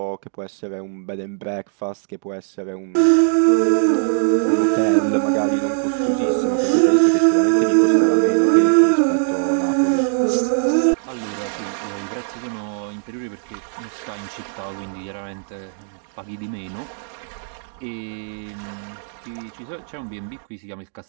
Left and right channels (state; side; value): silent; left; digital silence